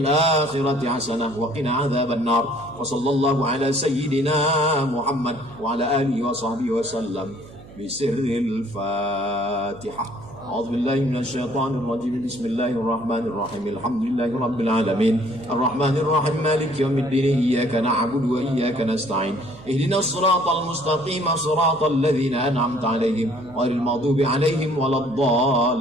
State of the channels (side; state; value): right; noise; hum, 19 dB below the sound